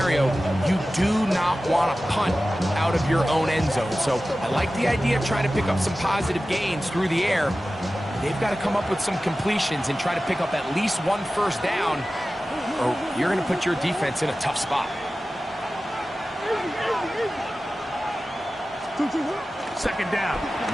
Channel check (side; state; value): both; normal; correlation 0.95